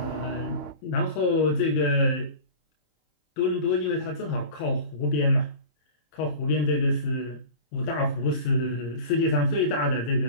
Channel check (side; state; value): right; late; 26 ms